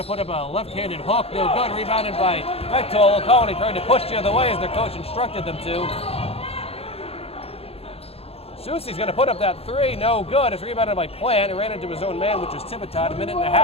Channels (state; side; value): late; right; 0.29 ms